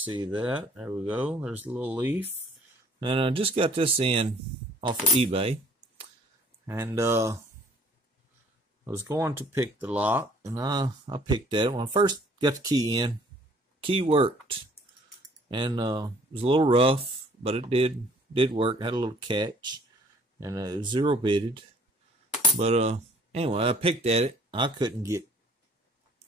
that. There we go. There's a little leaf, and I just got this in off of eBay, and I was going to pick the lock, and I picked that. When I first got the key in, key worked, and it was a little rough, but it did work. Had a little catch, and it was zero bitted, but anyway, I picked at it. I couldn't get,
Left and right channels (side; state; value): both; normal; correlation 0.58